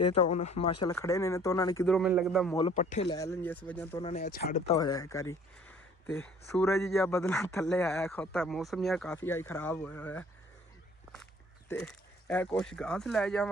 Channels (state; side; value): normal; both; correlation 0.54